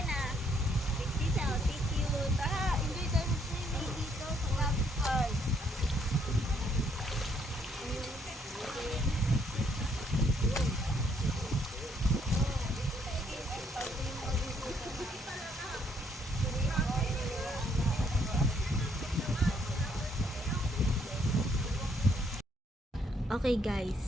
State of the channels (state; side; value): normal; both; correlation 0.69